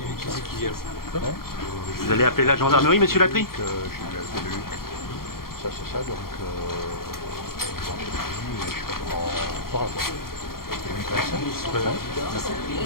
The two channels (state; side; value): late; right; 0.93 ms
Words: Vous allez appeler la gendarmerie, monsieur Latry? Ça, c'est ça, donc. Je sais pas comment.